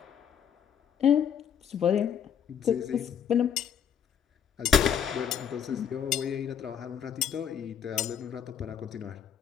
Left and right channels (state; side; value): quieter; right; 8.3 dB